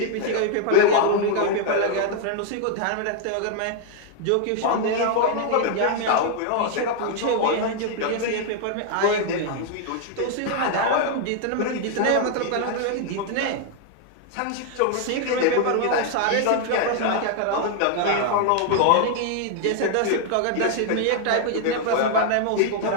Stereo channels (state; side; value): different; both; correlation 0.00